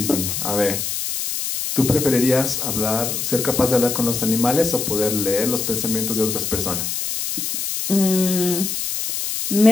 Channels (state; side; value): noise; left; hiss, 3 dB below the sound